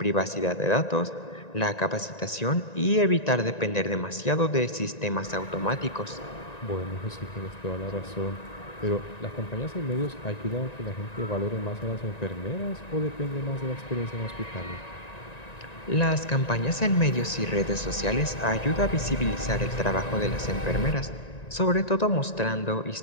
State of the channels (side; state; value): right; late; 1.9 ms